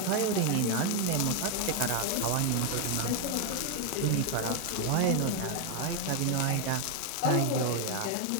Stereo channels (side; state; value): both; different; correlation 0.01